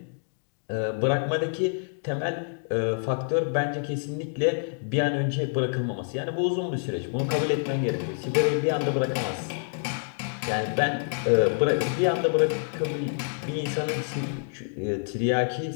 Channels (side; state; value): right; silent; digital silence